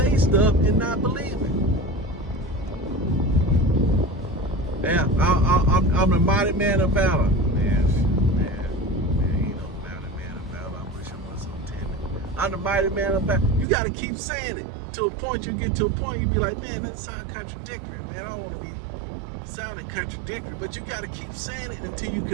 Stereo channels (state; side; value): drops out; left; at 13.7 s